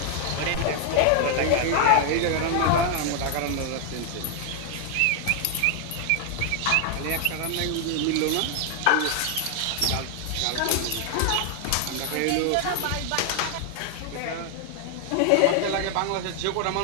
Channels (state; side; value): different; both; correlation 0.00